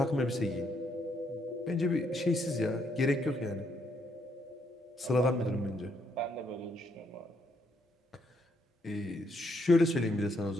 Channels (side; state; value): both; normal; correlation 0.74